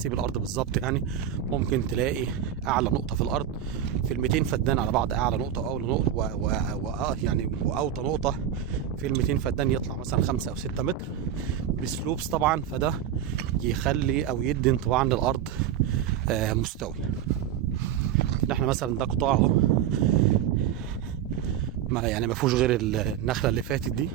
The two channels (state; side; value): quieter; left; 9.9 dB